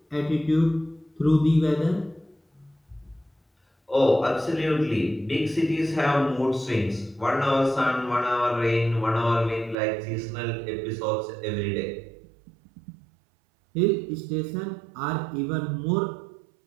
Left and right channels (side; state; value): left; drops out; at 9.8 s